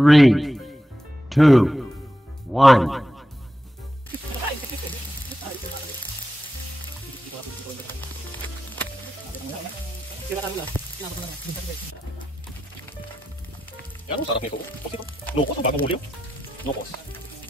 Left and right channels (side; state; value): both; normal; correlation 0.89